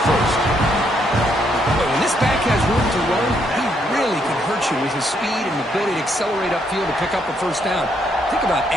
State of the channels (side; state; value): both; normal; correlation 0.73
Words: first. But when this back has room to run, he really can hurt you with his speed and ability to accelerate upfield to pick up a first down. Think about